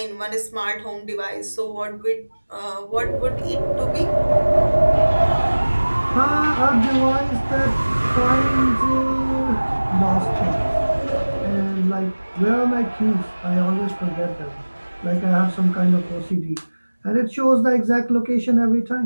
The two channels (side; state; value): both; inverted; correlation -1.00